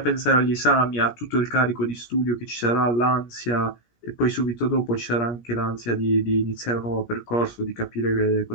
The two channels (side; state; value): right; late; 17 ms